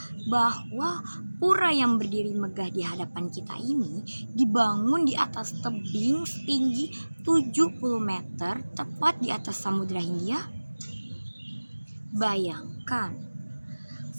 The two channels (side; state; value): both; inverted; correlation -1.00